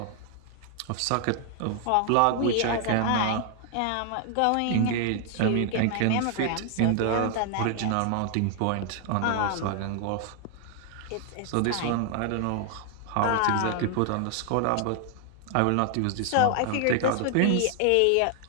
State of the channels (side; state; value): both; different; correlation 0.00